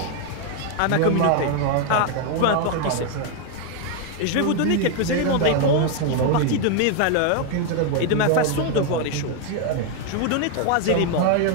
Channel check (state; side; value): different; both; correlation 0.01